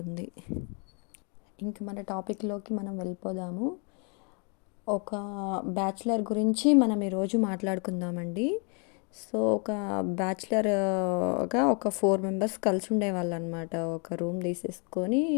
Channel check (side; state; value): right; quieter; 36.8 dB